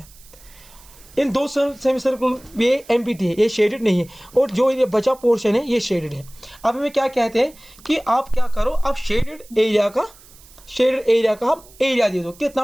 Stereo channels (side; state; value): right; noise; hiss, 24 dB below the sound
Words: इन 2 सेमी सर्कल ये एम्प्टी है, ये शेडेड नहीं है, और जो ये बचा पोर्शन है ये शेडेड है। अब हमें क्या कहते हैं कि आप क्या करो, आप शेडेड एरिया का हम एरिया दे दो,